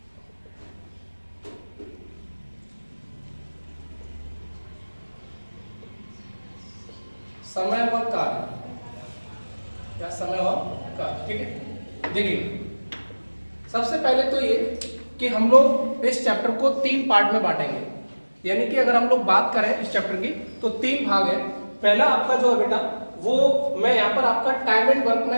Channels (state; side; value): inverted; both; correlation -1.00